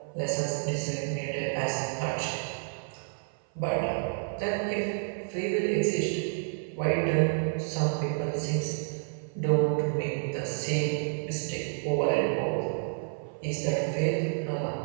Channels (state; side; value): silent; left; 55 dB below the other